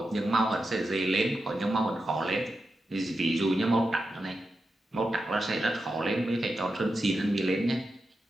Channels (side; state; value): both; normal; correlation 0.89